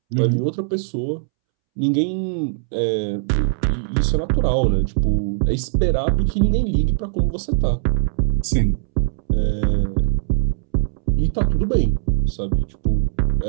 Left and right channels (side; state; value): left; silent; 66 dB below the other